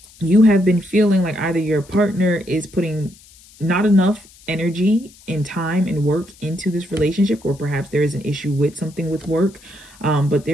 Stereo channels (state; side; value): noise; left; hiss, 25 dB below the sound